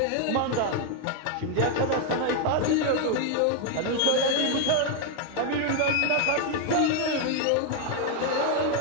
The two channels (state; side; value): different; both; correlation 0.01